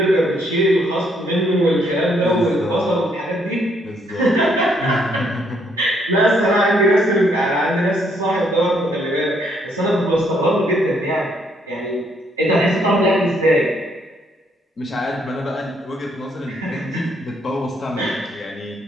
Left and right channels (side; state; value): both; normal; correlation 0.70